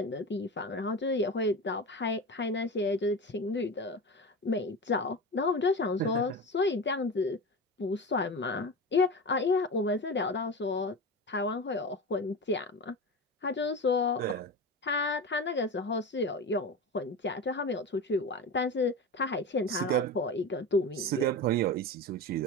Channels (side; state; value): both; normal; correlation 0.26